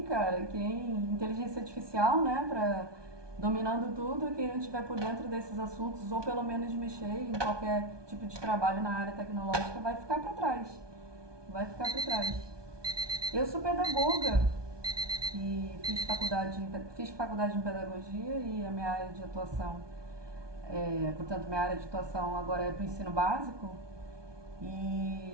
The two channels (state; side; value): late; left; 1.2 ms